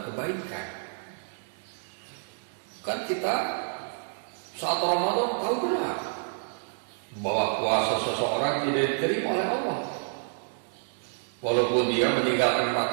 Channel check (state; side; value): silent; left; digital silence